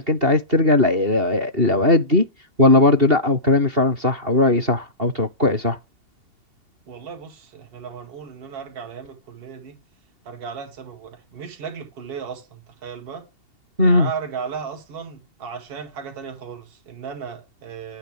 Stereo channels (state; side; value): late; left; 2.7 ms